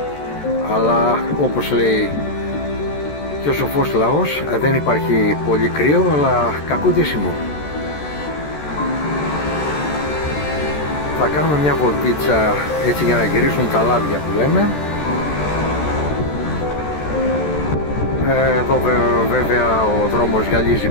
αλλά όπως λέει και ο σοφός λαός, δεν υπάρχει πολύ κρύο, αλλά κακό ντύσιμο. Θα κάνουμε μια βολτίτσα έτσι για να γυρίσουν τα λάδια που λέμε. Εδώ βέβαια ο δρόμος γυαλίζει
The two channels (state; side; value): late; right; 14 ms